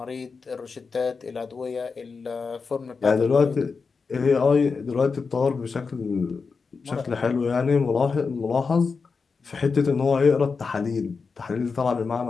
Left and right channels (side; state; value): right; quieter; 4.9 dB